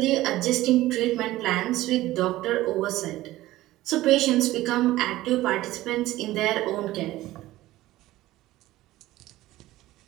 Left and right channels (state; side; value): quieter; left; 16.4 dB